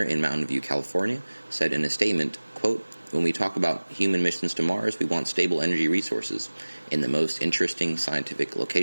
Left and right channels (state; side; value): inverted; both; correlation -1.00